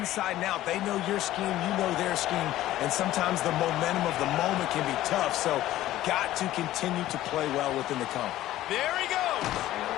and out. They know your scheme, you know their scheme, and sometimes the momentum of the moment can be tough, so got to continue to play well within the conference. There he goes!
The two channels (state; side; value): quieter; right; 14.6 dB